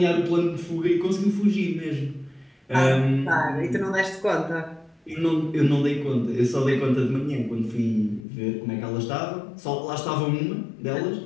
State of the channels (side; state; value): right; drops out; at 8.2 s